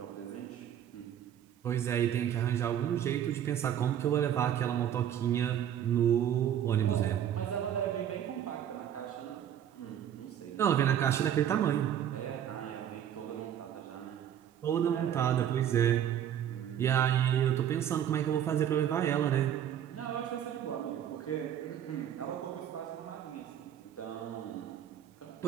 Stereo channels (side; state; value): left; quieter; 10.0 dB